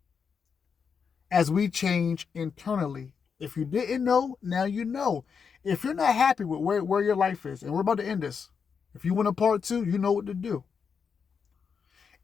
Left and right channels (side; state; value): right; quieter; 6.2 dB